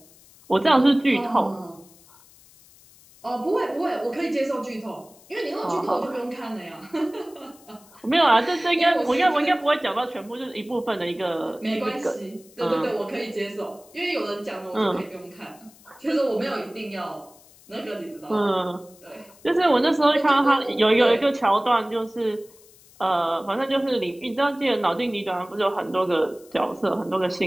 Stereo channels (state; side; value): noise; left; hiss, 26 dB below the sound